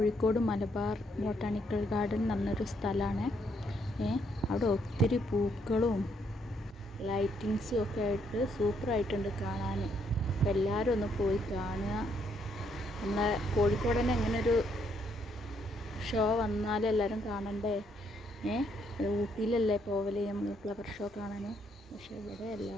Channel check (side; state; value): both; normal; correlation 0.72